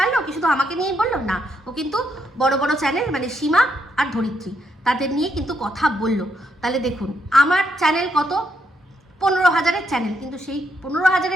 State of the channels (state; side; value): normal; both; correlation 0.77